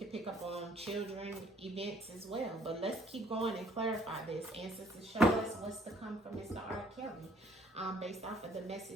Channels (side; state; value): both; normal; correlation 0.61